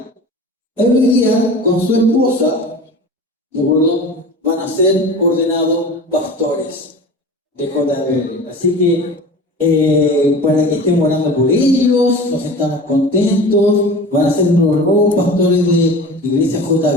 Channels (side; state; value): both; normal; correlation 0.36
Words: Hoy día, con su esposa, ¿de acuerdo?, van a ser ordenados pastores de JBL. Así que para que estemos orando por ellos, nos estamos contentos. Van a ser los nuevos pastores de Iglesia